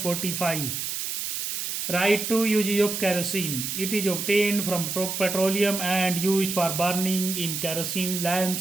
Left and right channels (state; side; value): noise; right; hiss, 3 dB below the sound